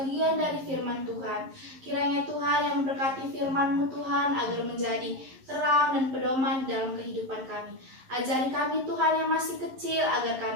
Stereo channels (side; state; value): left; late; 11 ms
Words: dari firman Tuhan. Kiranya Tuhan yang memberkati firman-Mu Tuhan agar menjadi terang dan pedoman dalam kehidupan kami. Ajari kami Tuhan yang masih kecil agar